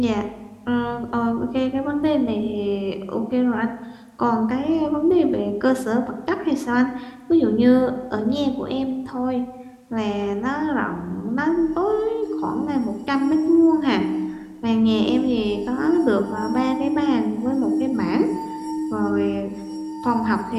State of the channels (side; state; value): both; identical; correlation 1.00